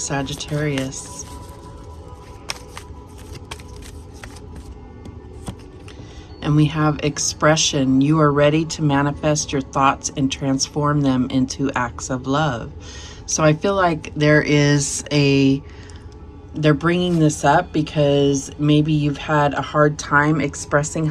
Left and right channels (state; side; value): identical; both; correlation 1.00